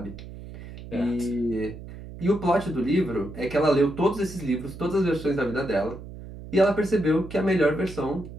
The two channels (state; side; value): noise; right; hum, 13 dB below the sound